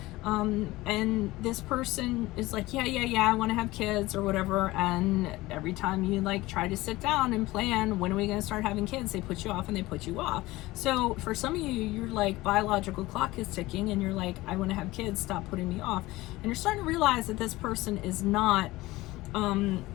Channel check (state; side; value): quieter; right; 19.0 dB